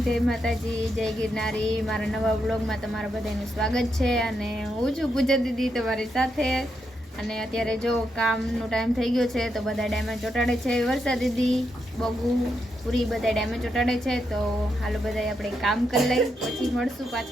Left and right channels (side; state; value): both; normal; correlation 0.82